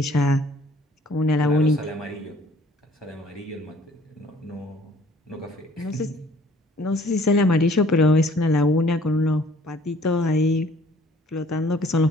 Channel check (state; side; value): normal; both; correlation 0.56